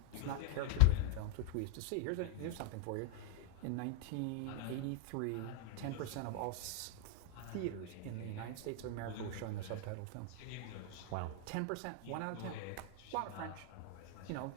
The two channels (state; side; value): different; both; correlation 0.00